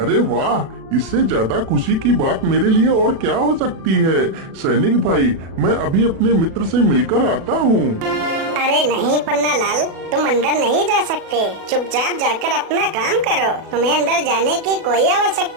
वाह, इससे ज्यादा खुशी की बात मेरे लिए और क्या हो सकती है। सैनिक भाई, मैं अभी अपने मित्र से मिलकर आता हूँ। अरे नहीं पन्नालाल, तुम अंदर नहीं जा सकते। चुपचाप जाकर अपना काम करो, तुम्हें अंदर जाने की कोई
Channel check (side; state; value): left; late; 36 ms